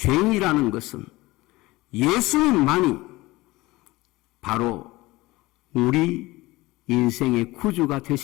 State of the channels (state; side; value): quieter; right; 20.1 dB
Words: 것은 예수님만이 바로 우리 인생의 구주가